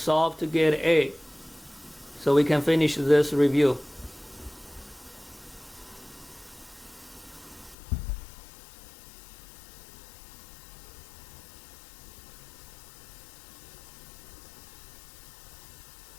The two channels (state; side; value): drops out; right; at 7.8 s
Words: to get A, so we can finish this review.